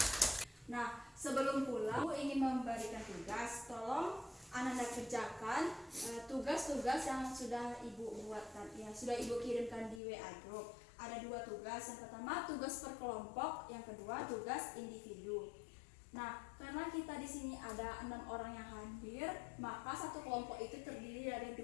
Nah, sebelum pulang, Ibu ingin memberikan tugas. Tolong Anda kerjakan tugas-tugas yang sudah Ibu buatkan, yang sudah Ibu kirimkan di WA Group. Ada 2 tugas. Yang pertama tugas per kelompok, yang kedua tugas individu. Nah, karena kita di sini ada 6 orang yang hadir, maka satu kelompok itu terdiri dari 2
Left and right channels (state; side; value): drops out; right; at 10.0 s